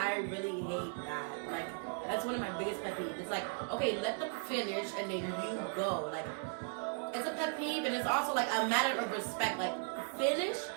really hate that. Like, that's one of my biggest pet peeves. It's like, okay, let them finish and then you go. Like, it's a pet peeve and it's also like a matter of respect. Like, finish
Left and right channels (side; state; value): left; silent; 53 dB below the other